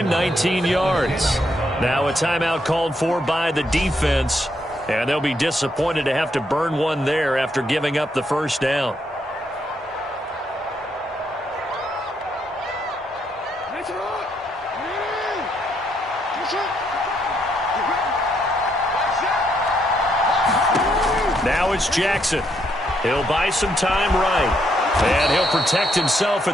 19 yards. Now a timeout called for by the defense, and they'll be disappointed to have to burn one there after giving up the first down. Now it's Jackson. He'll buy some time right. And he'll protect himself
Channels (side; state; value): both; normal; correlation 0.75